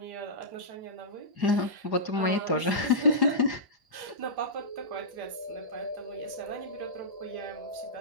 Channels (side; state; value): left; late; 1.1 ms